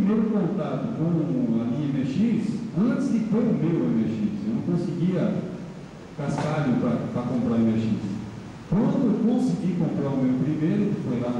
contato com a linha MX, antes de ter o meu MX. Eu não conseguia cascalho para comprar MX. Quando eu consegui comprar o meu primeiro, que foi lá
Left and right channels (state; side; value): identical; both; correlation 1.00